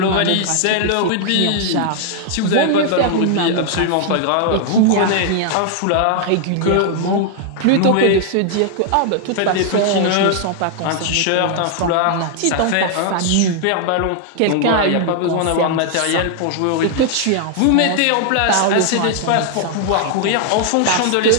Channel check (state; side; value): different; both; correlation 0.00